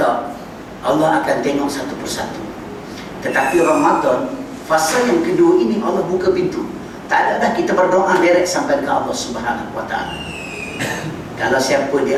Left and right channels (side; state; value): both; identical; correlation 1.00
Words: Allah akan tengok satu persatu. Tetapi Ramadan, fasa yang kedua ini Allah buka pintu. Tak ada dah kita berdoa direct sampai ke Allah Subhanahu Wa Taala. Kalau siapa di